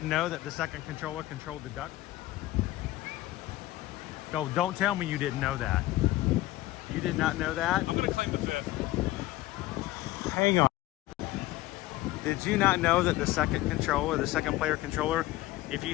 know that the second controller controlled the duck. So don't tell me you didn't know that. You did not know that? I'm going to claim the 5th. Hang on. Did you not know that the second controller, the second player controller, if you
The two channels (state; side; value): quieter; right; 17.0 dB